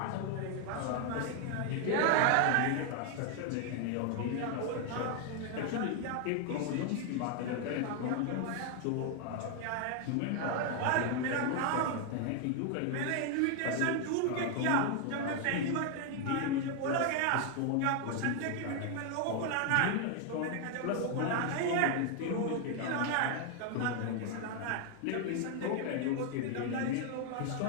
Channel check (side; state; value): both; different; correlation 0.00